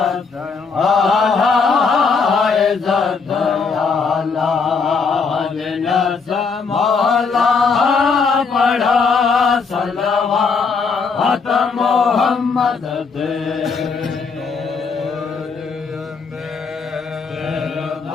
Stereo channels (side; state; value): right; quieter; 5.1 dB